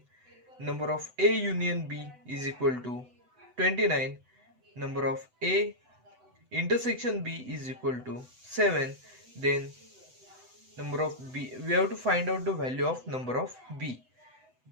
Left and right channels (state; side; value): late; left; 8.0 ms